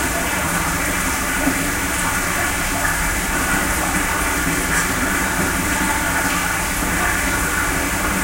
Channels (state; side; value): identical; both; correlation 1.00